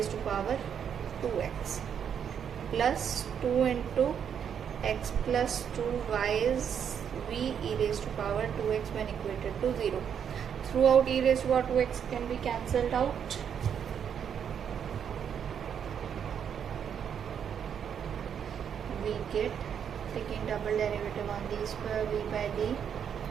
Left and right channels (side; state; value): left; quieter; 8.1 dB